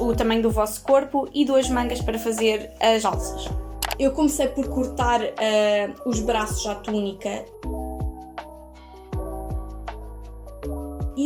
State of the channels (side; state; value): both; identical; correlation 1.00